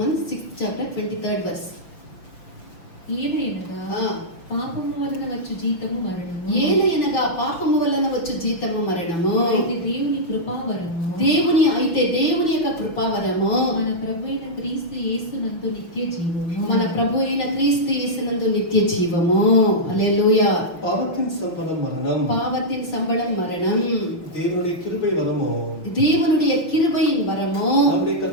6th chapter 23rd verse. ఏలయనగా పాపము వలన వచ్చు జీతము మరణము. ఏలయనగా పాపము వలన వచ్చు జీతము మరణము. అయితే దేవుని కృపావరము. అయితే దేవుని యొక్క కృపావరము మన ప్రభువైన క్రీస్తు యేసునందు నిత్య జీవము. మన ప్రభు అయిన క్రీస్తు యేసునందు నిత్య జీవము. హల్లెలూయా. பாவத்தின் சம்பளம் மரணம். பாவத்தின் சம்பளம் மரணம். தேவனுடைய கிருபை வரமோ. தேவனுடைய கிருபையின் வரமோ. நம்முடைய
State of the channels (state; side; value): late; right; 5.8 ms